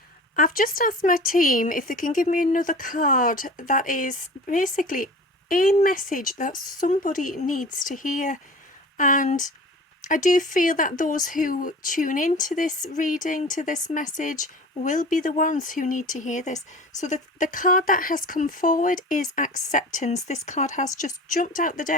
I've just asked my team if they can give me another card that is basically a message that somebody needs to hear. And I do feel that those who tune into this reading, to this message, will be the ones who need to hear this. So the card that has come forward is acceptance. This card has just jumped out the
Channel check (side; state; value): both; normal; correlation 0.38